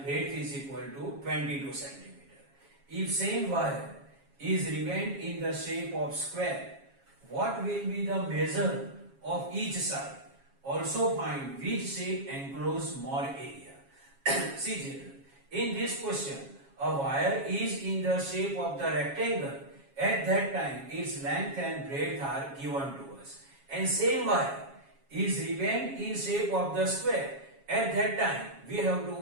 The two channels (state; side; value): late; left; 7.3 ms